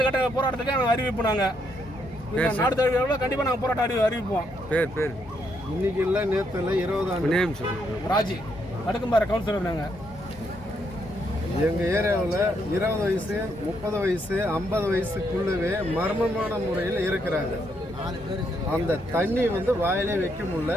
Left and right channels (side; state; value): both; normal; correlation 0.76